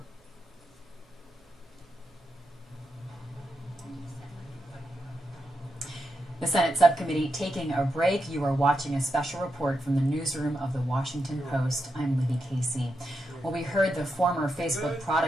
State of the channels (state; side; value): normal; both; correlation 0.85